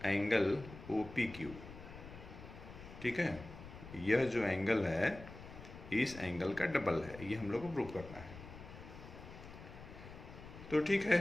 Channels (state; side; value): noise; left; rumble, 14 dB below the sound